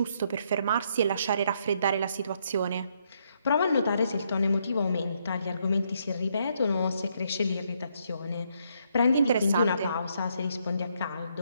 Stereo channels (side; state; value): both; inverted; correlation -0.73